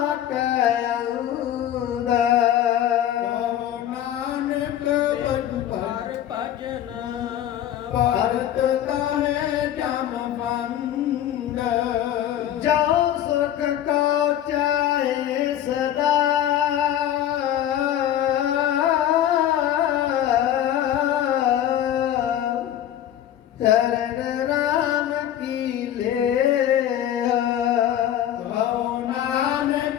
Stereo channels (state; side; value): quieter; right; 11.3 dB